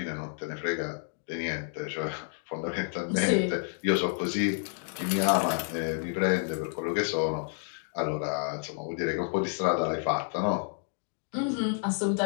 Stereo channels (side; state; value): right; silent; 58 dB below the other